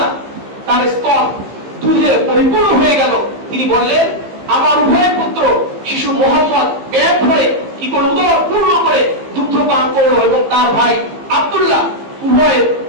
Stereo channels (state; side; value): late; left; 15 ms